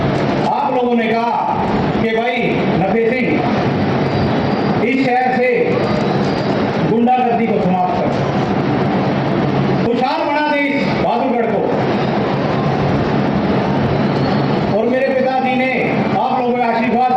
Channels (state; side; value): identical; both; correlation 1.00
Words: आप लोगों ने कहा कि भाई नफे सिंह इस शहर से गुंडागर्दी को समाप्त कर, खुशहाल बना दे इस बहादुरगढ़ को। और मेरे पिताजी ने आप लोगों के आशीर्वाद